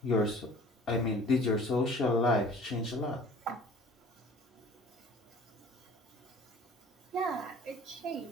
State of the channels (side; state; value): both; normal; correlation 0.49